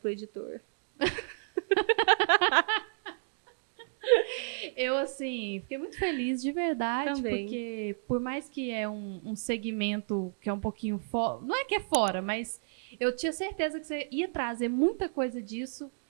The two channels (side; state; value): left; silent; digital silence